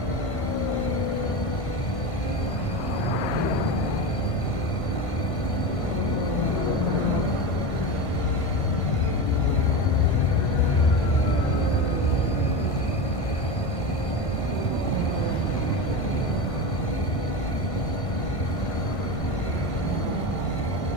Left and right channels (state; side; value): late; right; 1.5 ms